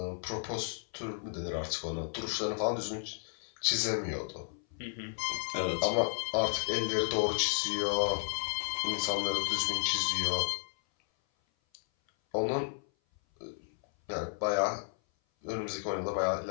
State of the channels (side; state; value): right; silent; 56 dB below the other